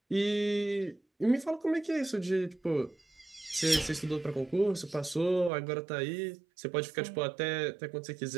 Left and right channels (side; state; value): left; drops out; at 5.5 s